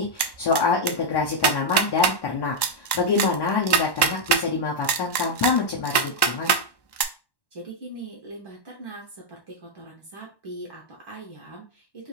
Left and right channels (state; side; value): late; right; 1.1 ms